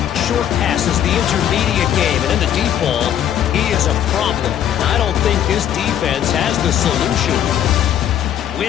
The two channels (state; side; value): quieter; right; 10.4 dB